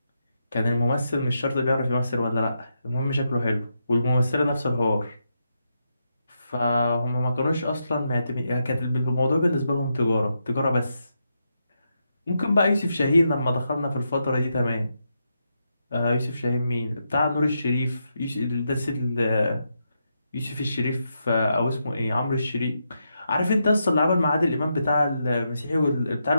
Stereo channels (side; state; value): both; inverted; correlation -0.84